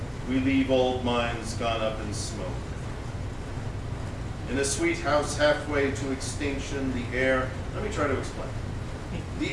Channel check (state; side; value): identical; both; correlation 1.00